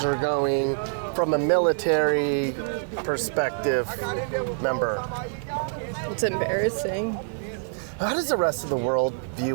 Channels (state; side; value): silent; left; digital silence